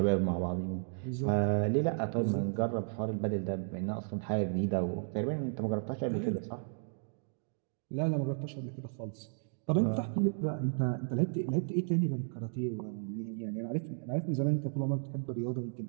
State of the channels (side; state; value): left; silent; digital silence